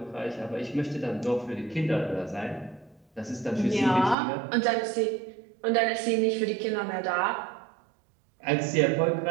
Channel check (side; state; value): left; drops out; at 4.2 s